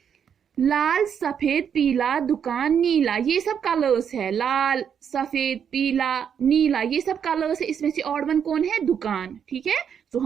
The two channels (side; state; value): left; quieter; 7.9 dB